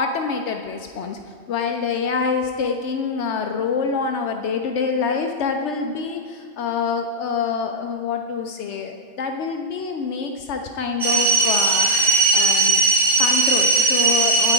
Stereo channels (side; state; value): right; late; 2.0 ms